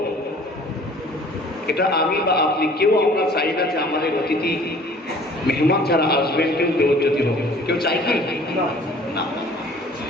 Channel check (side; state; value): both; normal; correlation 0.51